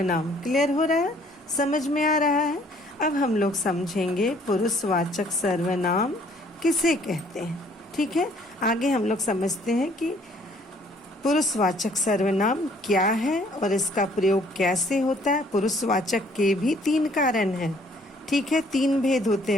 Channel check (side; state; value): both; normal; correlation 0.60